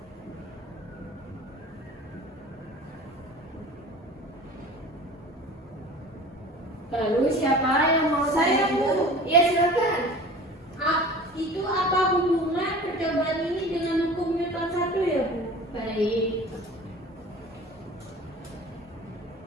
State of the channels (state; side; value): normal; both; correlation 0.40